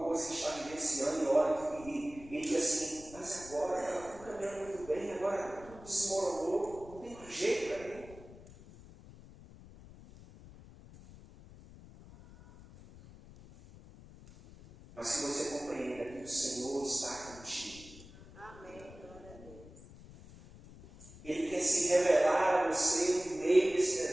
coisa que está vivenciando e olha e diz assim: mas agora ela está caminhando muito bem, agora tudo desmoronou, não tem mais jeito para mim. Mas que você compreenda que o Senhor está contigo. Amém. Ele quer se revelar a você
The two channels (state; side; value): noise; left; rumble, 19 dB below the sound